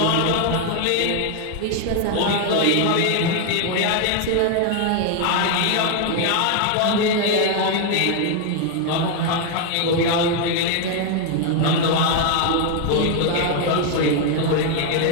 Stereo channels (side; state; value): both; different; correlation 0.00